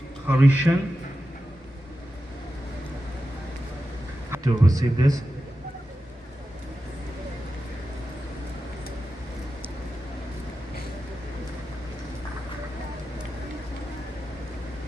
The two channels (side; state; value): both; normal; correlation 0.92